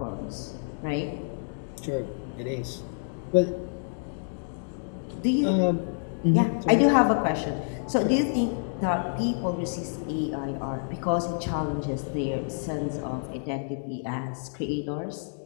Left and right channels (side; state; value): right; silent; digital silence